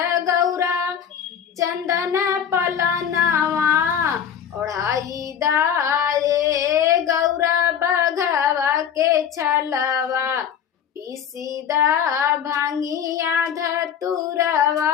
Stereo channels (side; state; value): right; quieter; 8.5 dB